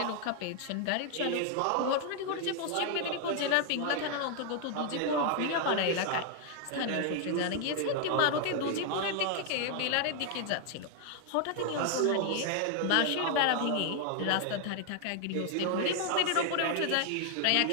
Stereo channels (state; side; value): different; both; correlation 0.00